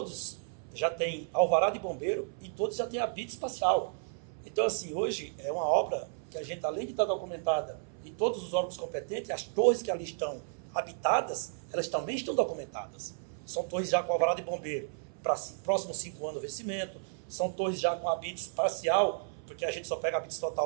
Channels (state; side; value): silent; left; 56 dB below the other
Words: já têm alvará de bombeiro e todos já têm habite espacial. Então, assim, hoje é uma obra que a gente, além de estar documentada e todos os órgãos competentes, as torres que ali estão habitadas, elas também estão documentadas. São torres já com alvará de bombeiro. para próximos 5 anos o vencimento. São torres já com habites parcial, porque a gente só pega habites